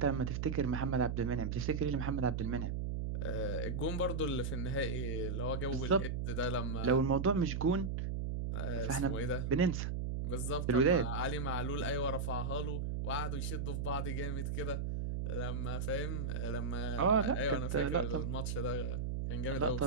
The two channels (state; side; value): noise; right; hum, 1 dB below the sound